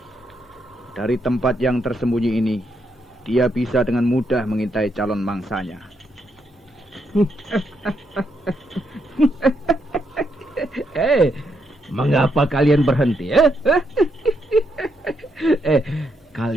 Dari tempat yang tersembunyi ini, dia bisa dengan mudah mengintai calon mangsanya. Mengapa kalian berhenti?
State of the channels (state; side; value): normal; both; correlation 0.79